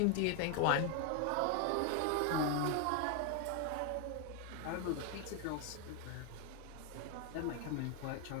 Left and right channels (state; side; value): different; both; correlation 0.01